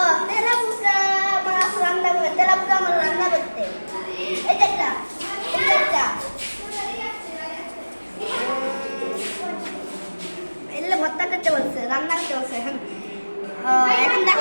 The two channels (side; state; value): both; inverted; correlation -1.00